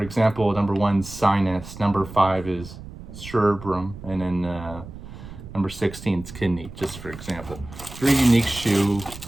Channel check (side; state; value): right; noise; rumble, 14 dB below the sound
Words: number 1 sinus, number 5 is cerebrum, and then number 16 is kidney, just for example. Very unique shoe,